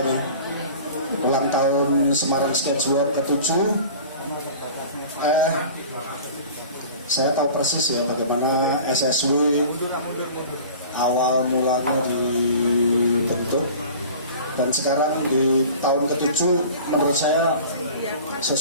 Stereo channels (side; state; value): both; inverted; correlation -0.41